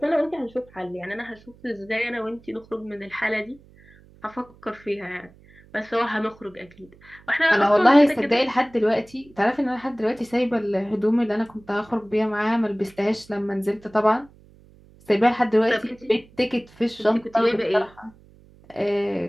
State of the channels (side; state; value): right; noise; hum, 26 dB below the sound